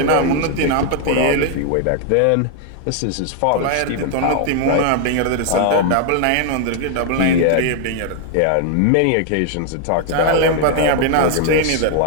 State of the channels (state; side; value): different; both; correlation 0.00